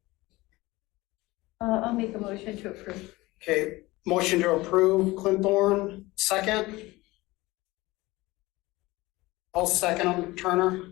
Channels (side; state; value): right; quieter; 20.3 dB